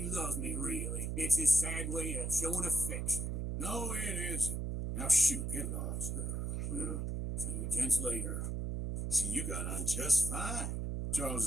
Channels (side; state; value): right; noise; hum, 2 dB below the sound